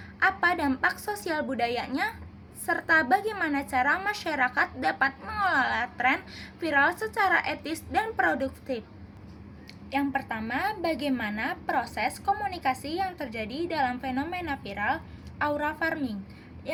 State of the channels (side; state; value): both; identical; correlation 1.00